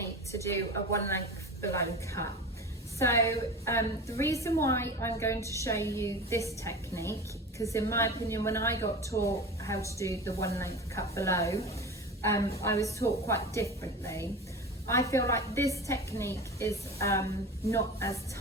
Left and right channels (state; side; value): normal; both; correlation 0.31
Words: to do a one length below cut. So the reason why I'm going to show you this technique, because in my opinion when I got taught how to do the one length cut below, I was taught quite differently. I feel like this technique is not as